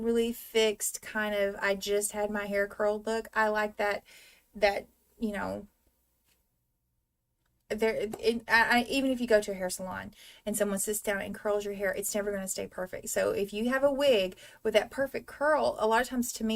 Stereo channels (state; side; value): identical; both; correlation 1.00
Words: fixed kind of, I just had my hair curled look. I like that, you know, even if you go to a hair salon and someone sits down and curls your hair, it's never going to stay perfect. So if you have a wig with that perfect curl, a lot of times to